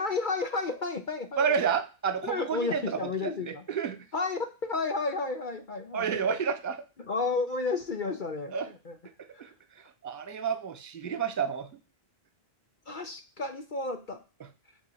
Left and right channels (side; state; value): right; late; 2.3 ms